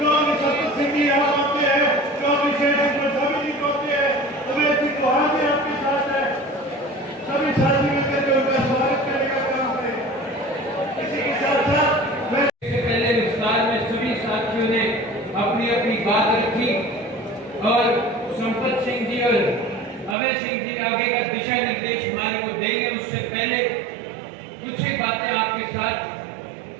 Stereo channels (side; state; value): left; drops out; at 20.2 s